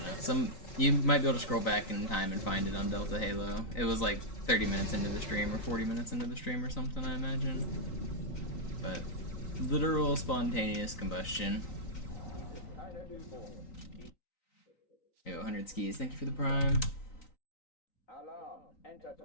know. You might be able to scroll back in time and find it on Delta Halo. It was like 30 minutes into the stream, or 40 minutes into the stream or something, I imagine. But, literal spontaneous combustion. Yo, 100 skis, thank you for the prime. Alarm,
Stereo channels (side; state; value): right; late; 3.9 ms